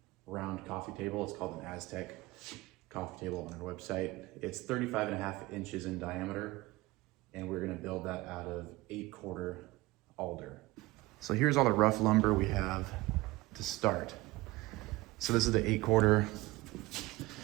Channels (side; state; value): left; quieter; 20.3 dB